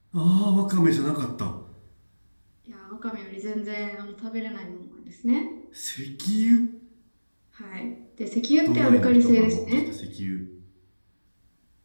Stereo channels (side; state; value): both; inverted; correlation -1.00